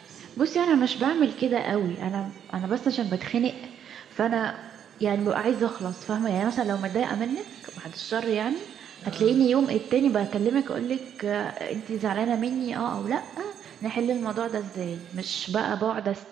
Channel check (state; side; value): quieter; left; 9.1 dB